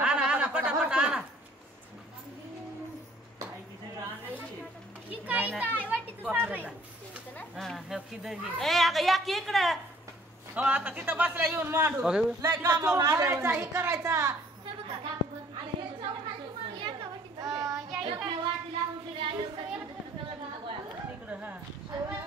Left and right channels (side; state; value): both; normal; correlation 0.58